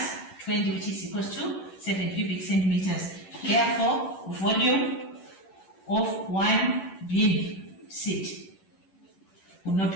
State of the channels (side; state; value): right; late; 11 ms